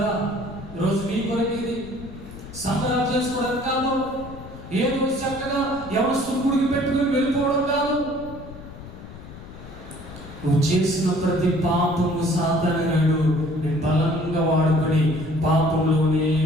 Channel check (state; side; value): noise; left; rumble, 15 dB below the sound